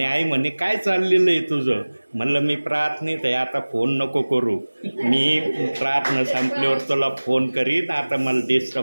आई म्हणे काय चाललेलं आहे तुझं? म्हणलं मी प्रार्थनेत आहे, आता फोन नको करू. मी प्रार्थना संपल्यावर तुला फोन करीन, आता मला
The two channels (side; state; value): both; inverted; correlation -1.00